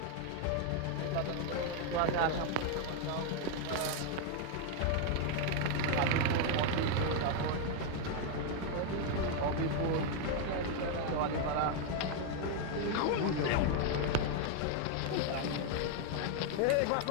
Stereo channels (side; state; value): both; different; correlation 0.01